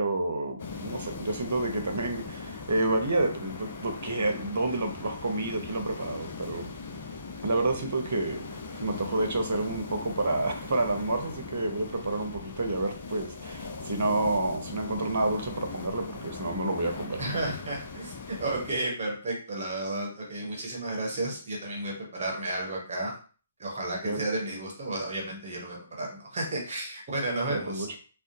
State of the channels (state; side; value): inverted; both; correlation -0.72